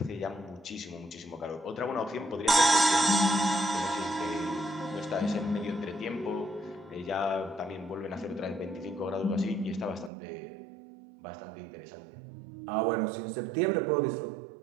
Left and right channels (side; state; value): left; drops out; at 10.1 s